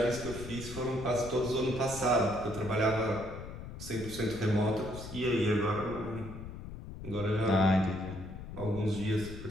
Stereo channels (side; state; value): left; noise; rumble, 11 dB below the sound